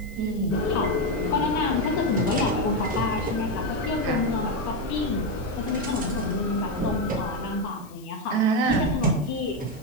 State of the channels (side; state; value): left; noise; hiss, 24 dB below the sound